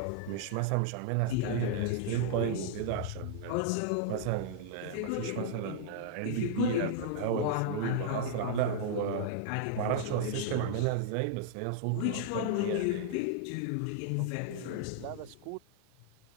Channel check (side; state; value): both; different; correlation -0.01